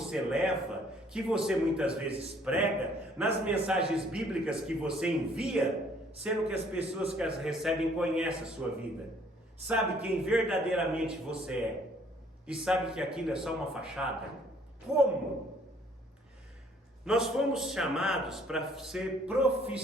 leva, que você muitas vezes prega, nas mensagens bíblicas que você envia, sendo que as pessoas que as recebem conhecem a sua vida, sabe quem verdadeiramente você é, e sabe que aquilo é só uma fachada? Como? Nós fomos chamados para ser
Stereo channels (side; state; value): both; normal; correlation 0.61